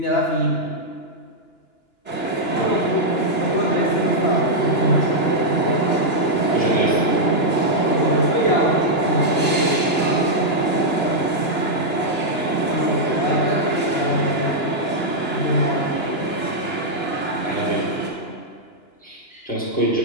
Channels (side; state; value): right; late; 2.9 ms